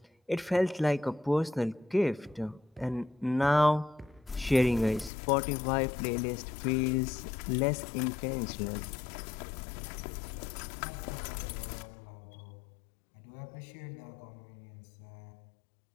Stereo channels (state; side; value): drops out; right; at 5.1 s